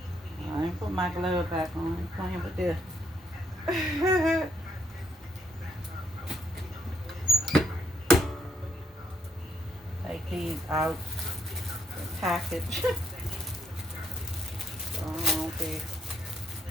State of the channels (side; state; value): both; normal; correlation 0.71